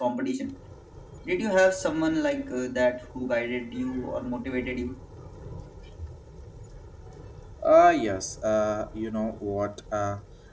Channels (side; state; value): both; identical; correlation 1.00